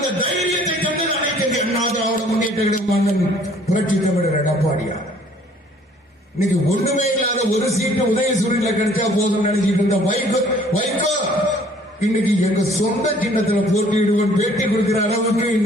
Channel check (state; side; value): normal; both; correlation 0.57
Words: தைரியத்தை தந்தது அனைத்து இந்திய அண்ணா திராவிட முன்னேற்ற கழகம் புரட்சி தமிழர் எடப்பாடியார். இன்னைக்கு ஒண்ணுமே இல்லாத ஒரு சீட்டு உதயசூரில கிடைச்சா போதும் நினைச்சிட்டு இருந்த வைகோ இன்னைக்கு எங்க சொந்த சின்னத்துல போட்டியிடுவன் பேட்டி கொடுக்கிற அளவுக்கு